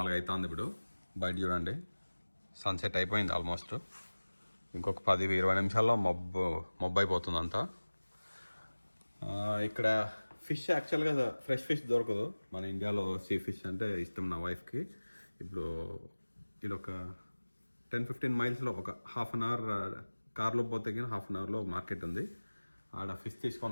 అవుతుంది ఇప్పుడు. బయట చూడండి, సన్సెట్ అయిపోయింది ఆల్మోస్ట్. ఇంకొక 10-20 నిమిషాల్లో మబ్బు అయిపోతుంది అంతా. ఇక్కడ ఫిష్ యాక్చువల్గా ఫ్రెష్ ఫిష్ దొరకదు మన ఇండియాలో. సీ ఫిష్ అంటే ఇష్టం నా వైఫ్కి. ఇప్పుడు ఇది ఒక 10-15 మైల్స్లో ఒక హాఫ్ అన్ అవర్ కార్లో పోతే కానీ హాఫ్ అన్ అవర్లో మార్కెట్ ఉంది. ఆడ ఫిష్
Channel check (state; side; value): inverted; both; correlation -1.00